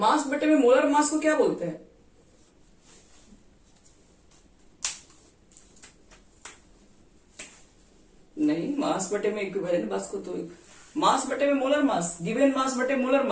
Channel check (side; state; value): both; identical; correlation 1.00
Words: बटे में मोलर मास को क्या बोलते हैं? नहीं, मास बटे में इक्विवेलेंट मास को तो मास बटे में मोलर मास, गिवन मास बटे मोलर